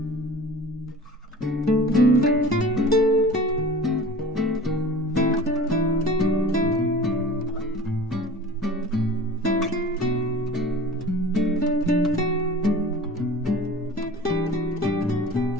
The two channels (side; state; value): both; normal; correlation 0.40